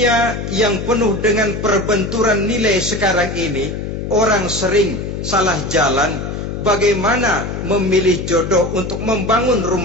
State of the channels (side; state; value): left; noise; hum, 5 dB below the sound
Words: yang penuh dengan perbenturan nilai sekarang ini, orang sering salah jalan bagaimana memilih jodoh untuk membangun